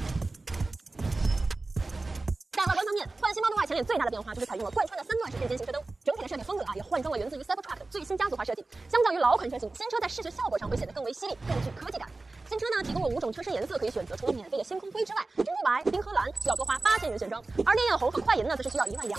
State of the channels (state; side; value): quieter; left; 3.3 dB